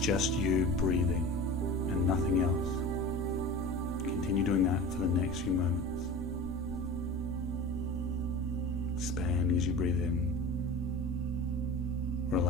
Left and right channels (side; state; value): both; normal; correlation 0.35